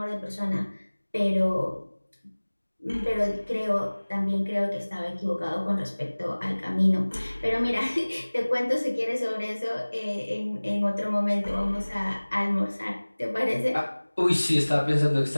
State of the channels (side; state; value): both; inverted; correlation -1.00